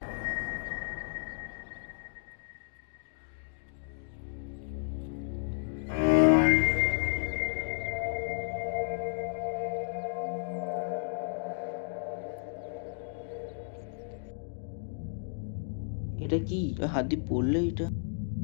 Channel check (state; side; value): silent; right; digital silence